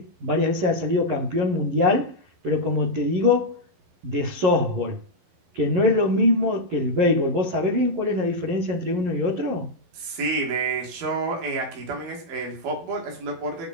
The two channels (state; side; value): late; left; 11 ms